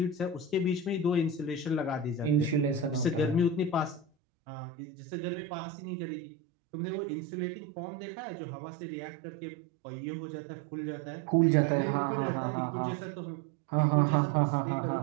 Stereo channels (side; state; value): left; drops out; at 4.0 s